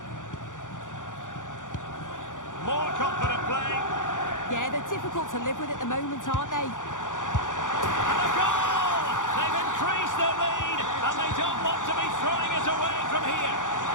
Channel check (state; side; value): late; right; 0.87 ms